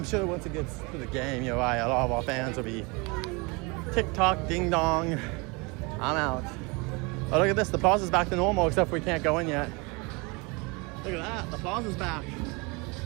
sure once it gets to the game, you're right, a lot of our fans will be TikTok, ding dong. I'm out. Oh, look at this. The Plaza's back to normal, except we can't go in yet. Look at that. The Plaza's back.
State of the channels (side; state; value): left; quieter; 28.1 dB